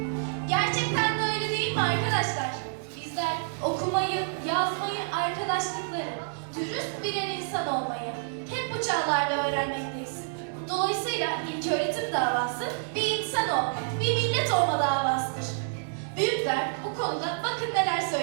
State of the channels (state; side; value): silent; left; digital silence